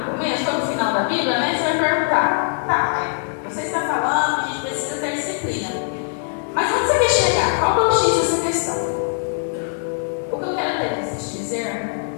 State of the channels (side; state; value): right; silent; 65 dB below the other